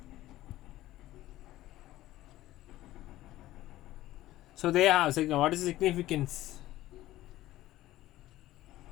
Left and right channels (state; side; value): quieter; right; 15.5 dB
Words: So they have, what is the significance?